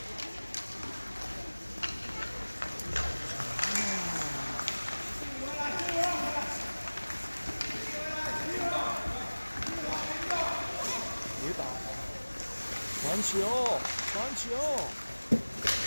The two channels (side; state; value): both; inverted; correlation -1.00